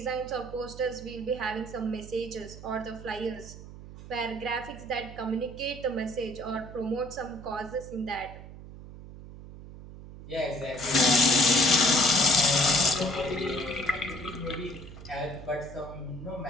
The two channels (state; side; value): noise; right; hum, 15 dB below the sound